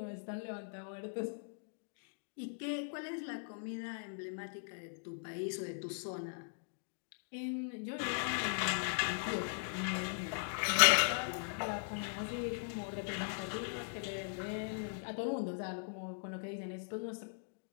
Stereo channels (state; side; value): silent; right; digital silence